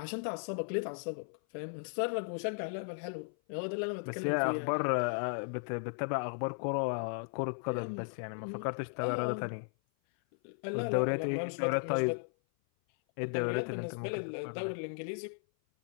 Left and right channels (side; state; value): right; silent; 54 dB below the other